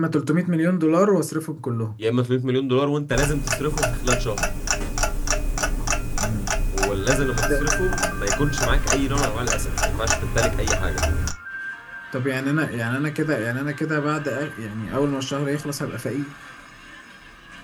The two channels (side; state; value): both; identical; correlation 1.00